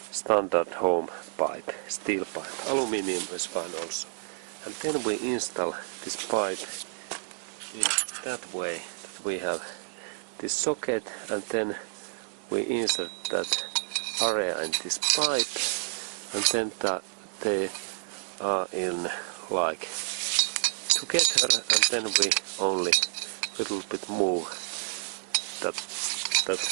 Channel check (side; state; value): left; silent; digital silence